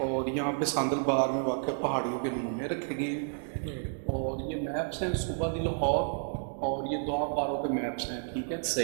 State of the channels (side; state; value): left; silent; digital silence